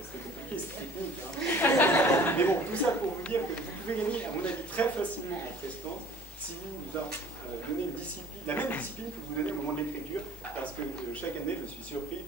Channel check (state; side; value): normal; both; correlation 0.49